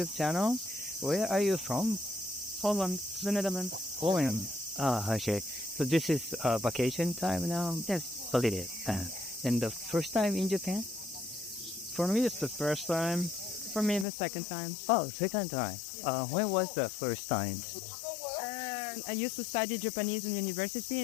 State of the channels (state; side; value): drops out; right; at 14.1 s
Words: channel. Where are you from? Holland, the Netherlands. Poland. Okay. So this is vacation time now? Yes. Holiday. And the first time in Japan? For me, it's the first time. For me, the second time. Oh, second time. When was the first time? I used to study Japanese in university